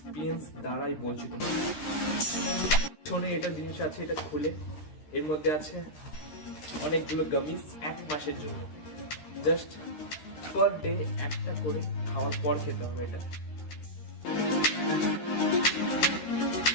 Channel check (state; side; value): late; right; 13 ms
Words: দ্বারাই বলছি তোমার। পিছনে এটা জিনিস আছে, এটা খুলে এর মধ্যে আছে অনেকগুলো গামিজ 1 মাসের জন্য। জাস্ট পার ডে একটা করে খাওয়ার পর খেতে হবে এটা।